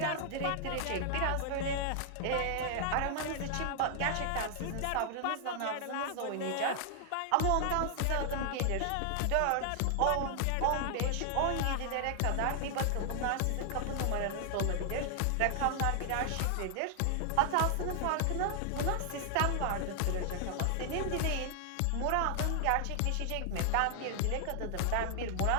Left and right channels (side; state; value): both; different; correlation 0.00